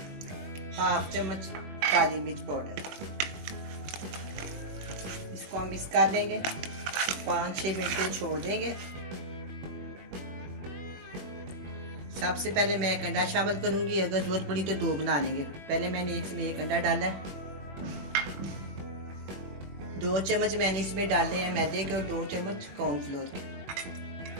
हाफ चम्मच काली मिर्च पाउडर। इसको हम मिक्स कर देंगे, 5-6 मिनट के छोड़ देंगे। सबसे पहले मैं एक अंडा शामिल करूंगी, अगर जरूरत पड़ी तो 2 बना लेंगे। पहले मैंने इसमें 1 अंडा डाला है। 2 चम्मच मैंने इसमें डाले हैं मैदे के और 2 चम्मच कॉर्नफ्लोर के।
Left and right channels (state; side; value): late; left; 21 ms